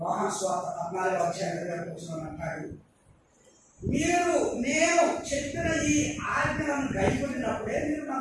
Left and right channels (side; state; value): both; identical; correlation 1.00